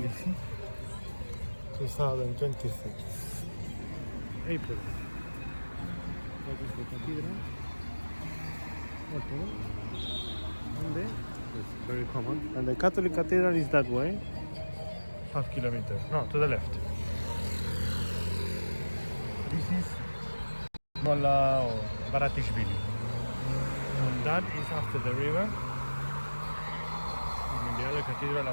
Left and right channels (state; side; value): inverted; both; correlation -1.00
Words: 2026, April. That is the cathedral. Okay. And there, it's very common. And the Catholic cathedral is that way, half kilometer. No, to the left. This is Molla or Baratishvili. And that is after the river. And the other cathedral